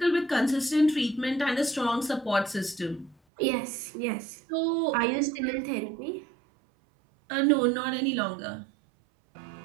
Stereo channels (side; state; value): left; drops out; at 3.2 s